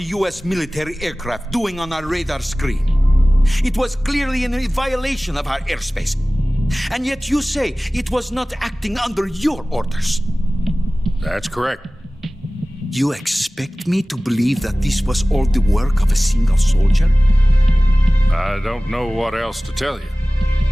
U.S. military aircraft doing on our radar screen? It was clearly in a violation of our airspace. And yet you say it was not acting under your orders. That's correct. You expect me to believe that this was all the work of a single soldier? I don't know what else to tell you.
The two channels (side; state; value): both; normal; correlation 0.98